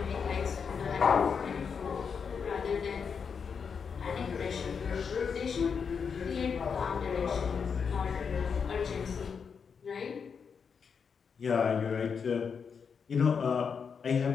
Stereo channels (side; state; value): right; quieter; 6.2 dB